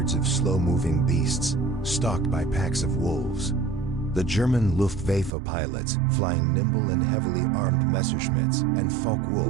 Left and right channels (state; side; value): drops out; left; at 5.3 s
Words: of slow-moving beasts, stalked by packs of wolves. The German Luftwaffe pilots, flying nimble and heavily armed Messerschmitts and